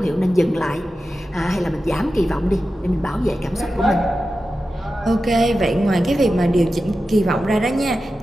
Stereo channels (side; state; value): both; normal; correlation 0.92